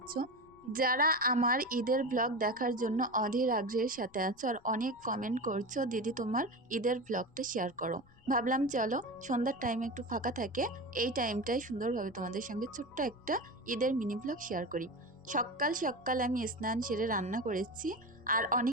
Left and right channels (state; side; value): noise; left; rumble, 27 dB below the sound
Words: যারা আমার ঈদের ব্লগ দেখার জন্য অধীর আগ্রহের সাথে আছো, আর অনেক কমেন্ট করছো দিদি তোমার ঈদের ব্লগটা শেয়ার করো। ভাবলাম চলো সন্ধ্যার টাইমে একটু ফাঁকা থাকে, এই টাইমটাই সুন্দরভাবে তোমাদের সঙ্গে ছোট্ট একটা ঈদের মিনি ব্লগ শেয়ার করি। সকাল সকাল আমি স্নান সেরে রান্না করেছি, আর